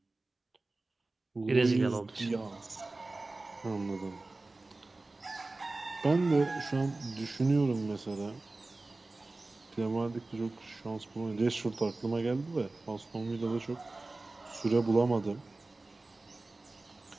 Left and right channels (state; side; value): quieter; left; 3.2 dB